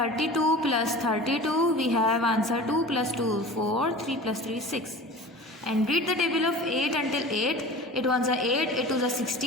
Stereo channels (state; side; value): normal; both; correlation 0.38